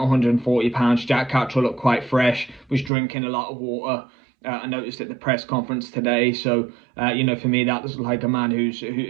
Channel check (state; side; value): drops out; left; at 2.9 s